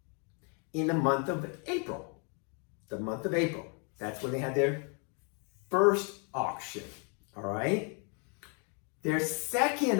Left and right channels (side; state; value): right; quieter; 37.2 dB